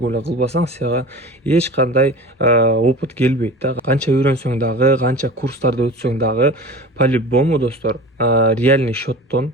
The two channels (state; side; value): normal; both; correlation 0.36